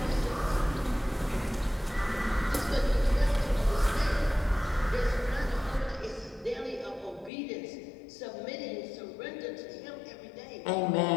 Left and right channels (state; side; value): drops out; right; at 7.3 s